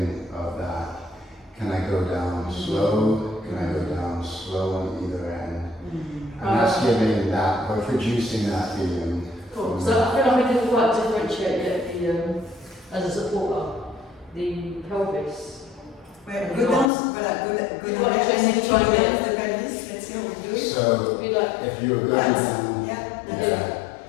of that. Can I go down slow? Can I go down slow on either end? And that's giving that, or producing that feeling. Cool. So I feel like I didn't quite differentiate yet the as a supporter, the pelvis. Well, go down, voilà, go You've down, got to and then just try try down the pelvis. Let's see how we do it. So Be like, if you're going Yes. down, Yeah, that's yeah, it.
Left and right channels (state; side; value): drops out; right; at 16.9 s